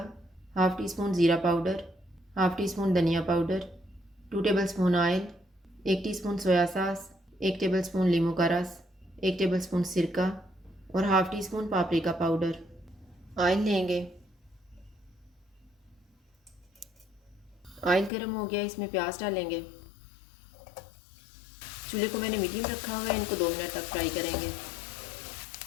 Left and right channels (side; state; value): right; drops out; at 18.1 s